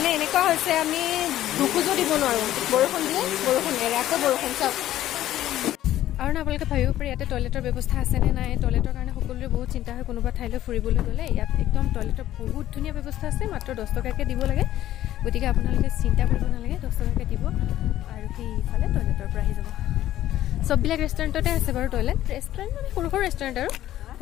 এনেকুৱা হৈছে, আমি দুখোজো দিব নোৱাৰোঁ, বৰষুণ দিয়ে, বৰষুণ এৰে, আকৌ বৰষুণ। চাওক, আৰু না আপোনালোকে ভাবিব পাৰে ইয়াতে টয়লেটৰ ব্যৱস্থা আছেনে নাই। টয়লেটৰ কাৰণে সকলোৰে বহুত চিন্তা হয়, কোনোবা ঠাইলৈ ফুৰিবলৈ গ'লে। ইয়াত একদম টয়লেটৰ বহুত ধুনীয়া ব্যৱস্থা আছে, মাত্ৰ 10 টকাকৈ দিব লাগে। গতিকে আপোনালোকে চিন্তা কৰিব নালাগে, 10 টকাকৈ দিব আৰু সেইফালে টয়লেটৰ পৰা আহি যাব। চববিলাক ৰেষ্টুৰেণ্টতে আছে বাৰু টয়লেট, ৰেষ্টুৰেণ্ট মানে সৰু সৰু ৰেষ্টুৰেণ্ট আৰু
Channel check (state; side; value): quieter; right; 13.3 dB